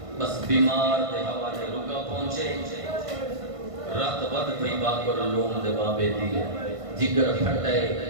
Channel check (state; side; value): late; left; 1.5 ms